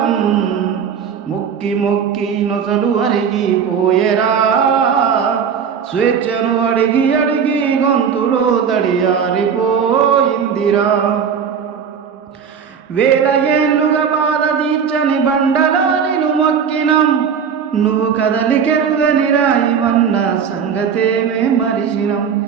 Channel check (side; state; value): left; quieter; 7.1 dB